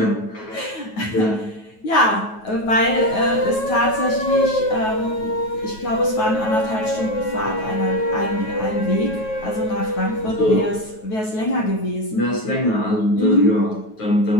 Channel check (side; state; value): right; late; 9.3 ms